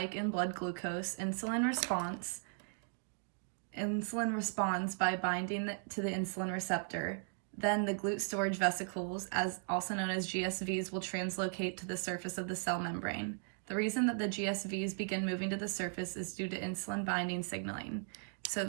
in blood glucose, insulin responds by binding to the insulin receptor. Then the GLUT storage vesicles, also known as GSVs, will translocate to the surface of the cell membrane. The reason that the GSVs begin moving to the surface is due to insulin binding signaling.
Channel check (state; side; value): silent; left; 53 dB below the other